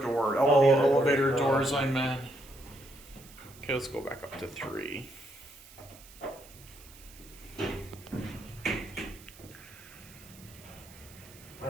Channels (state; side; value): noise; right; hiss, 21 dB below the sound